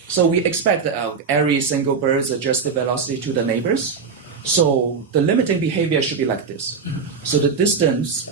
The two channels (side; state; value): left; quieter; 5.5 dB